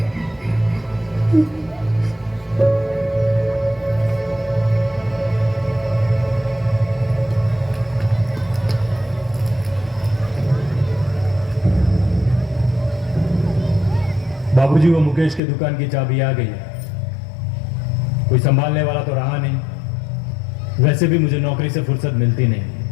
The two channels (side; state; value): right; drops out; at 15.4 s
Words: वो मुकेश के दुकान की चाबी आ गई है। कोई संभालने वाला तो रहा नहीं। वैसे भी मुझे नौकरी से फुर्सत मिलती नहीं,